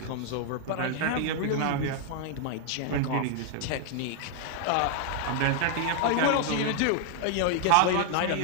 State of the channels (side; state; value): both; different; correlation 0.00